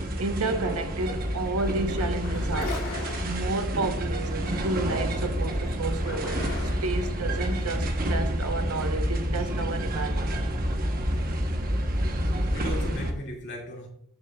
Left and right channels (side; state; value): both; normal; correlation 0.59